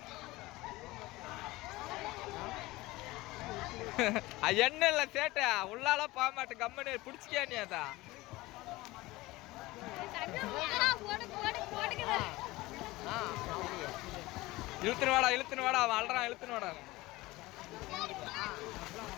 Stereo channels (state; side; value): quieter; right; 19.9 dB